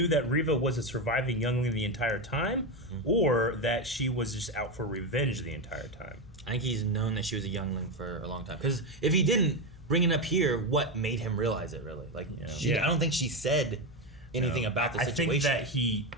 that Riva was a surviving youngling the entire time, or that she was just out for revenge the entire time? I think he's known that she was a youngling for a long time. Because if he didn't bring it up here, what made him realize it, really? Like, I don't think she said anything about the situation. I think that he,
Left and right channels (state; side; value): normal; both; correlation 0.11